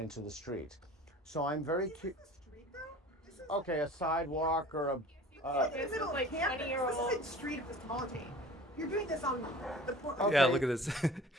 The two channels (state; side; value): normal; both; correlation 0.44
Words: the street. So I'm very curious. Okay, a sidewalk or a. This is like 20-year-old. This isn't street epistemology. You're doing this on the Okay. Yeah, look at this.